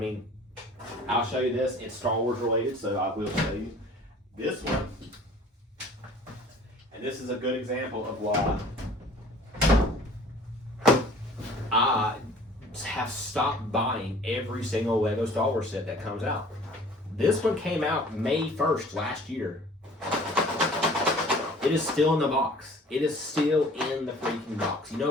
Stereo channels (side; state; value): both; normal; correlation 0.50